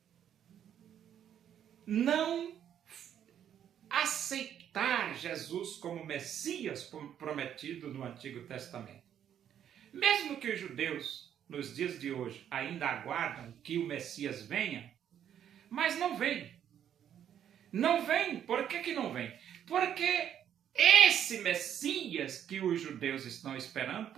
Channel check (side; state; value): left; quieter; 9.7 dB